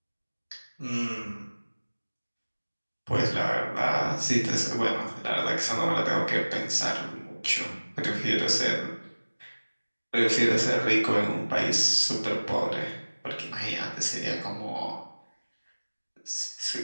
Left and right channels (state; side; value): inverted; both; correlation -1.00